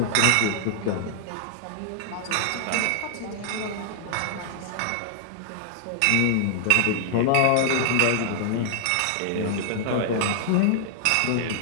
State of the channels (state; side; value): different; both; correlation -0.01